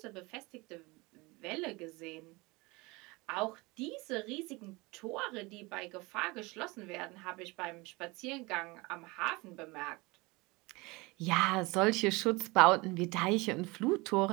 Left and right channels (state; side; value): quieter; left; 24.3 dB